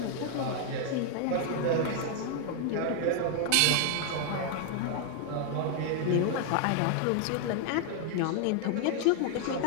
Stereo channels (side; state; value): both; different; correlation 0.00